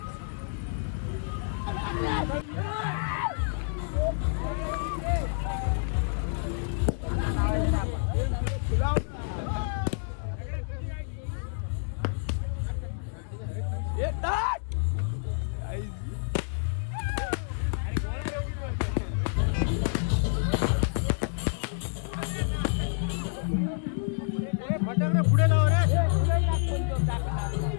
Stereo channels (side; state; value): right; silent; digital silence